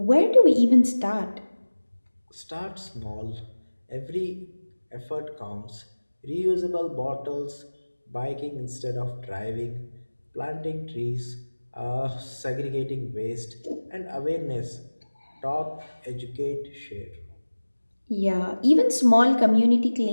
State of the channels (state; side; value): inverted; both; correlation -1.00